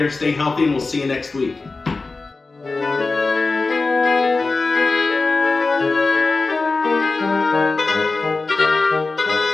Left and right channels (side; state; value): right; quieter; 3.7 dB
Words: stay healthy, and we'll see you next week.